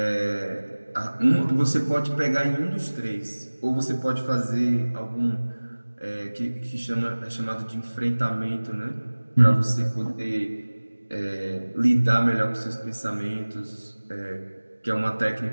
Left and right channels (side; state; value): both; inverted; correlation -1.00